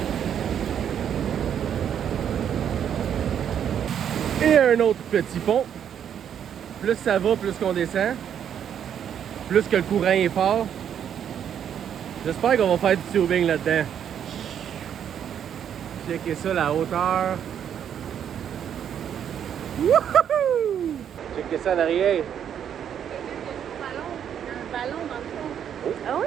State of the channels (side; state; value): left; quieter; 9.0 dB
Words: Et un autre petit pont. Plus ça va, plus qu'on descend. Plus que le courant est fort. J'espère qu'on va faire du tubing là-dedans. Checkez ça, la hauteur. Wouhou! Checkez ça en arrière. Un ballon dans le fond. Oh. Ah